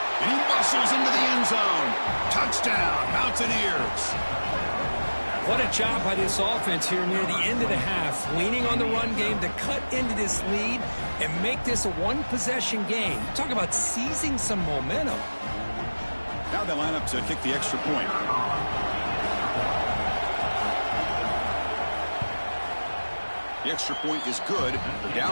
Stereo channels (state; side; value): inverted; both; correlation -1.00